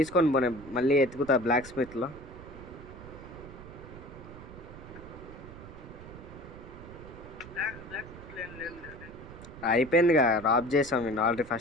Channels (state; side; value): noise; right; rumble, 15 dB below the sound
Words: పోనీ మళ్ళీ ఎతుకుతా బ్లాక్ స్మిత్లో. అయిపోయిందిగా, రాబ్ చేసాం నేను ఆల్రెడీ